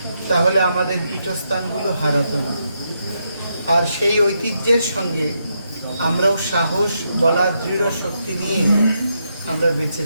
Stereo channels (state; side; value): inverted; both; correlation -0.81